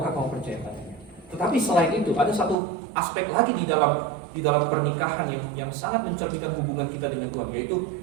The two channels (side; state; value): left; drops out; at 2.6 s